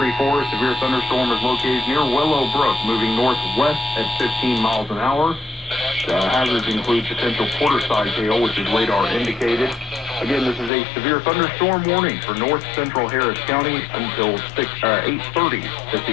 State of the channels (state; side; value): drops out; right; at 10.7 s